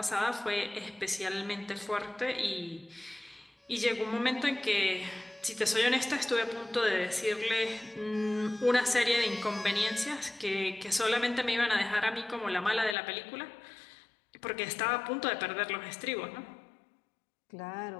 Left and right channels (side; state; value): right; drops out; at 13.0 s